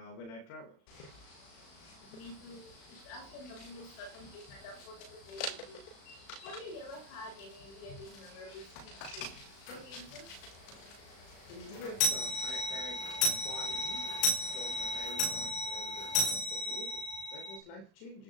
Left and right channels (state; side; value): late; right; 36 ms